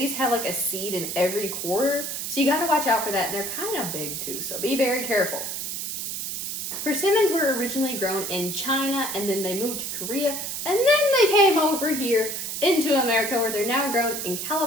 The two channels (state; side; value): noise; right; hiss, 4 dB below the sound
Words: have like a seed in every quarter, so you gotta watch out for that, and they're kind of big too, so be very careful. Persimmons were originally grown in China, and then they moved to Korea, and then they came over here into America, where they're now grown in